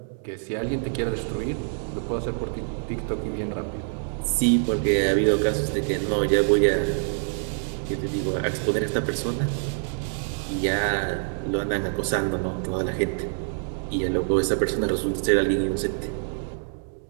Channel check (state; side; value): silent; left; digital silence